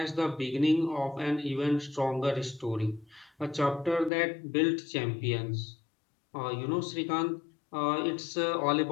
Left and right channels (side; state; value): right; drops out; at 4.1 s